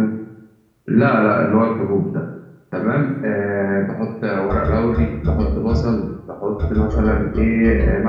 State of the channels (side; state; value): both; identical; correlation 1.00